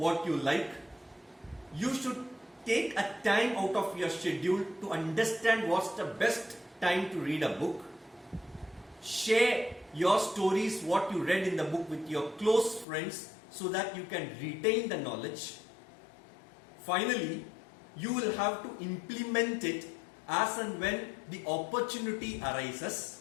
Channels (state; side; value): drops out; right; at 12.9 s